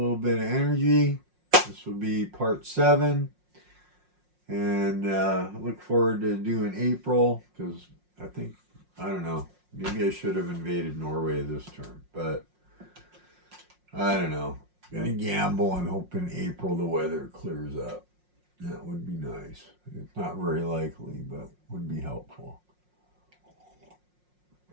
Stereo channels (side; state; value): left; late; 5.6 ms